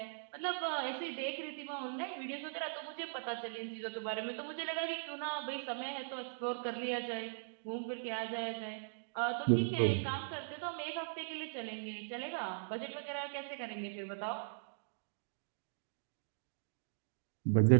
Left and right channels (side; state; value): left; silent; digital silence